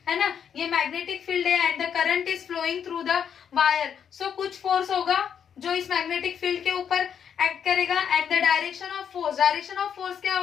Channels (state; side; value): quieter; right; 8.0 dB